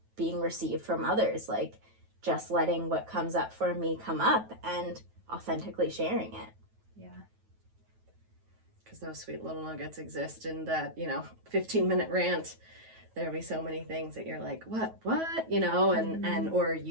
being received from others, like just letting what comes up for me come up and authentically sharing it. Yeah. Because those sweet little nuggets exist in that, you know, 15-minute rant. There'll be so many things that you're like, what, you know, and or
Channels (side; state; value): left; late; 9.2 ms